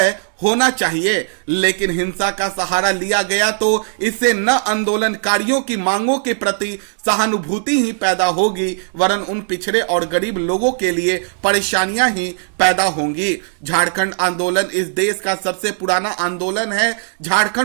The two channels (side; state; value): left; silent; digital silence